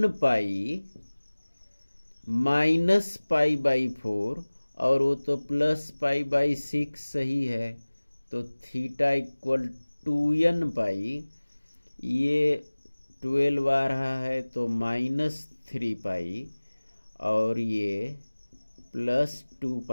pi minus pi by 4 और वो तो प्लस पाई बाई 6 सही है, तो थीटा इक्वल 2n पाई, ये 12 आ रहा है तो माइनस 3 पाई और ये प्लस 2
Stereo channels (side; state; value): both; inverted; correlation -1.00